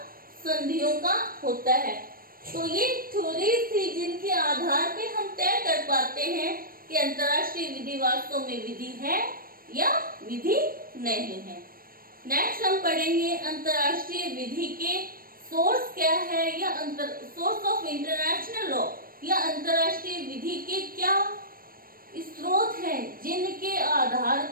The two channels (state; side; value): late; left; 0.42 ms